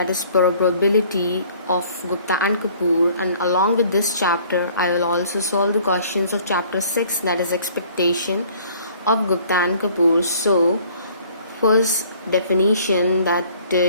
is probability of Gupta and Kapoor, and along with this chapter I will also solve the questions of chapter 6, that is expectation of Gupta and Kapoor. So first definition that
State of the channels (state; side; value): inverted; both; correlation -0.56